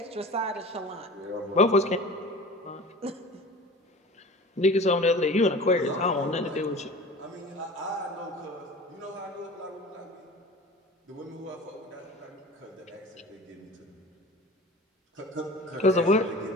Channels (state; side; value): normal; both; correlation 0.38